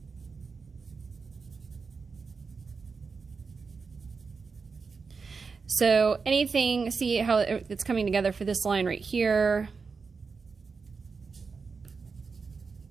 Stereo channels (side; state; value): left; quieter; 4.9 dB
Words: So anything, see how it's coming together for this line right here.